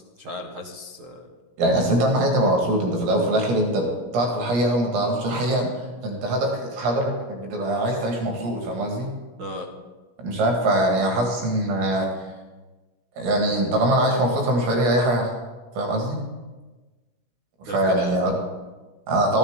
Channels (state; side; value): late; left; 17 ms